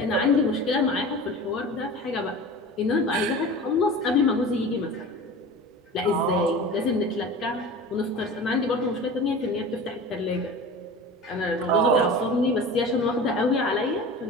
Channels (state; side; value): normal; both; correlation 0.36